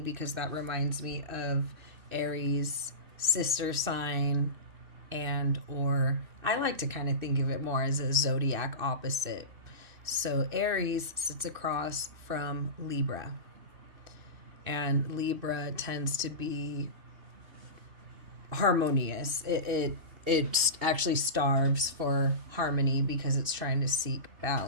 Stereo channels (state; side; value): late; left; 2.6 ms